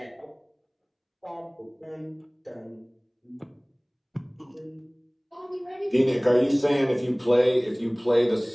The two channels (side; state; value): both; identical; correlation 1.00